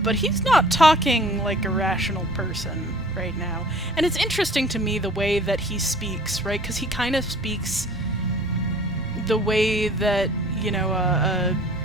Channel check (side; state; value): both; normal; correlation 0.49